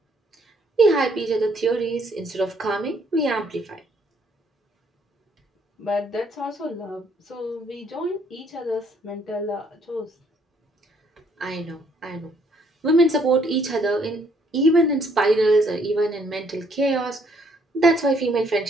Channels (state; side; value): normal; both; correlation 0.66